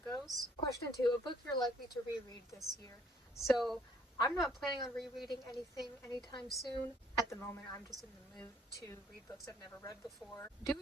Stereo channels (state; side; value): normal; both; correlation 0.62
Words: goes. Question 2, a book you're likely to reread this year. So I'm not planning on rereading anything anytime soon. At the moment, I'm just in the mood to read books I've never read before.